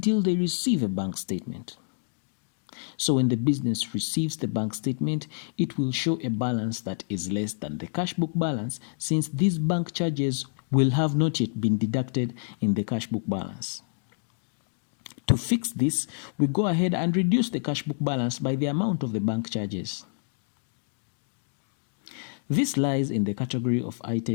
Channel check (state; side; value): silent; right; digital silence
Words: they receive a bank statement. So when the business receives the bank statement, it will show a balance that is less than the cash book balance, since these bank charges will have not yet been deducted in the cash book balance. To fix this, we go ahead and reduce the cash book balance by the amount of the bank charges. This lies in the category of